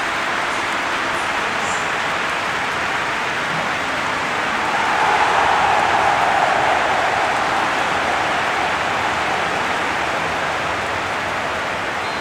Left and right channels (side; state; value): both; identical; correlation 1.00